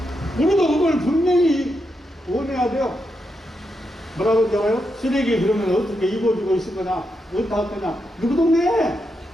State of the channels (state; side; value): normal; both; correlation 0.84